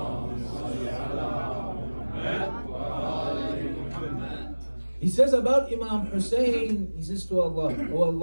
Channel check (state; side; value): inverted; both; correlation -1.00